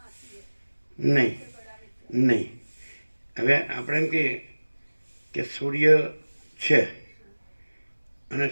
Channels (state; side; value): inverted; both; correlation -1.00